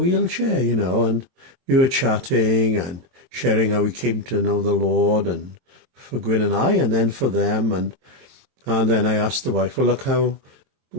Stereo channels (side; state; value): left; late; 23 ms